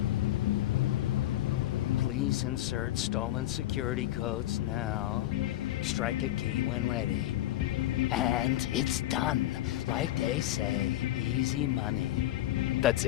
Please insert stolen security codes now. Strike a key when ready. And it's done. Like they say, easy money. That's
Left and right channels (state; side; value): quieter; right; 14.6 dB